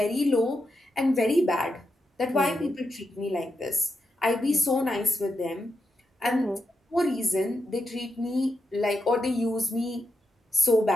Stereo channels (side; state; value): both; normal; correlation 0.85